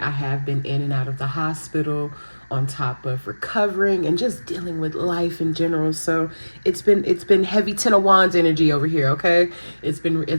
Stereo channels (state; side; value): inverted; both; correlation -1.00